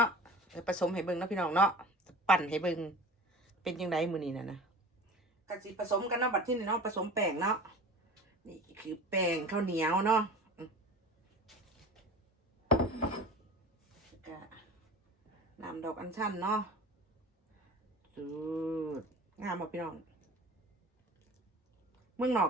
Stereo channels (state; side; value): normal; both; correlation 0.38